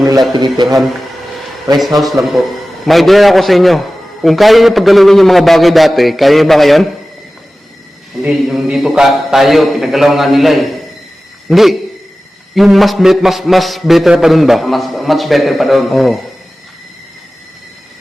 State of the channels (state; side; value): normal; both; correlation 0.96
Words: nila tinitirhan. Rest house lang po. May idea ako sa inyo. Kung kaya niyo paggalawin yung mga bagay dati, kaya niyo ba ngayon? Hindi, yung dito tayo, pinagalaw nga nila eh. Hindi. Yung mas better pa dun ba? Much better pa doon. Oo.